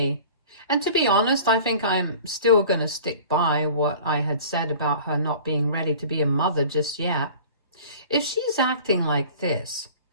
And to be honest, I think I'm still going to stick by what I had said about her not being ready to be a mother just yet. If she's acting like this,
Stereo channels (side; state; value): both; inverted; correlation -0.44